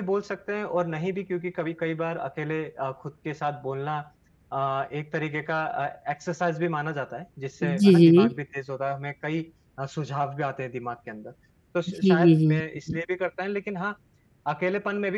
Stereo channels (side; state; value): both; identical; correlation 1.00